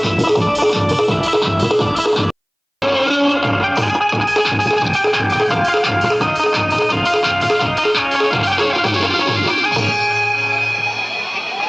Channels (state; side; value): identical; both; correlation 1.00